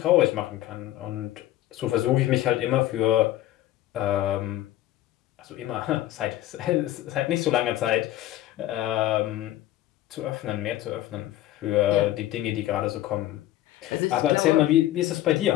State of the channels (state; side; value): quieter; right; 14.3 dB